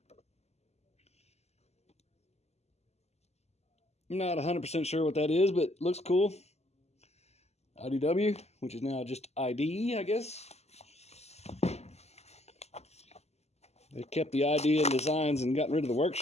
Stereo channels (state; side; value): late; right; 0.31 ms